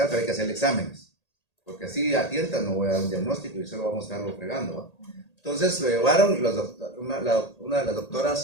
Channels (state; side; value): late; right; 1.8 ms